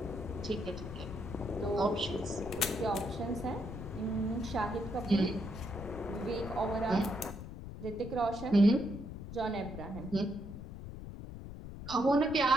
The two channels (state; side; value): noise; left; rumble, 10 dB below the sound